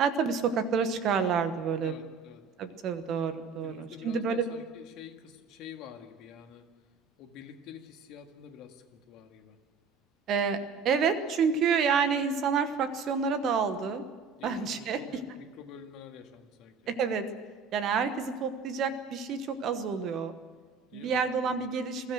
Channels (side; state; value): left; quieter; 5.4 dB